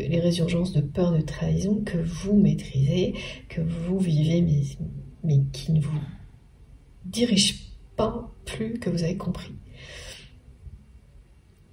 résurgences de peur de trahison que vous maîtrisez, que vous vivez, mais qui ne vous dirigent pas plus que vous avez compris.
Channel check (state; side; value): identical; both; correlation 1.00